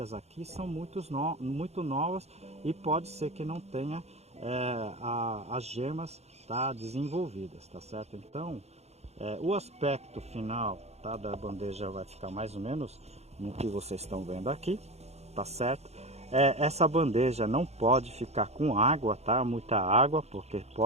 aqui são muito novas e pode ser que não tenha as gemas, tá, desenvolvidas, tá certo? Então o aspecto final, tá, da bandeja vai ficar mais ou menos no que vocês estão vendo aqui, tá certo? Essa bandeja não pode ficar com água, tá? Muita água, porque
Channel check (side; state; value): left; late; 0.31 ms